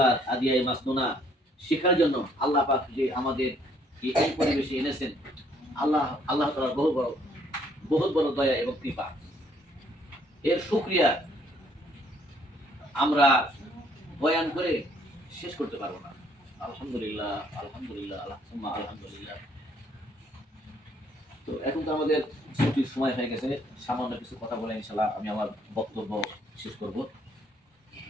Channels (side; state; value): both; normal; correlation 0.65